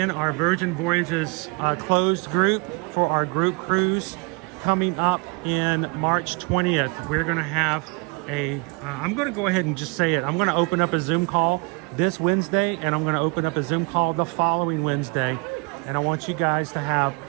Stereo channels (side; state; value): left; quieter; 32.1 dB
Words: our Virgin Voyages closed group for our group cruise coming up in March 20th, we're gonna have I'm gonna go ahead and just say it. I'm gonna open up a Zoom call this Wednesday, and I'm gonna open up a Zoom call the following Wednesday. And I want you guys to have